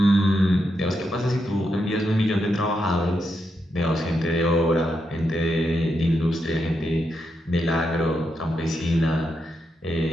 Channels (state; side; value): normal; both; correlation 0.83